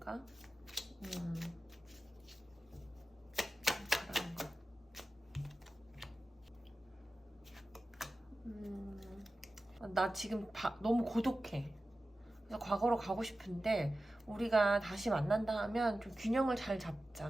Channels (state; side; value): normal; both; correlation 0.94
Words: 바라는 거. 나 지금 너무 고독해. 그래서 과거로 가고 싶은데 우리가 다시 만난다 하면 좀 균형을 잘